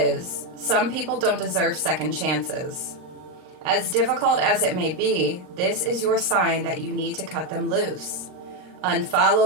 some people don't deserve second chances. As difficult as it may be, this is your sign that you need to cut them loose.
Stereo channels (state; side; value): late; left; 39 ms